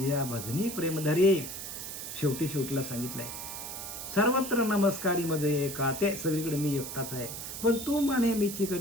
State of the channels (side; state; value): right; noise; hiss, 8 dB below the sound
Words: या भजनी प्रेमधरी. शेवटीला सांगितलंय, सर्वत्र नमस्कारी मजे एका, ते सगळीकडे मी एकटाच आहे, पण तू मन नेहमीची